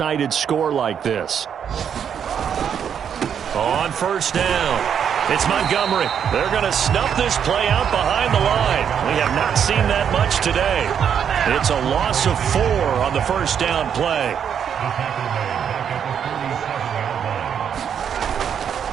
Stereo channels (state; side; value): quieter; left; 8.1 dB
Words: score like this. On 1st down, it's Montgomery. They're going to snuff this play out behind the line. We have not seen that much today. It's a loss of 4 on the 1st down play.